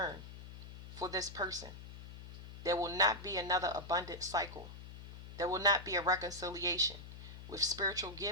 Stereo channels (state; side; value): noise; left; hum, 12 dB below the sound